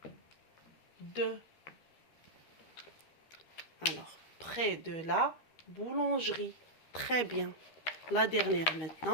de. Alors, près de la boulangerie. Très bien. La dernière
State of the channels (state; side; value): late; right; 13 ms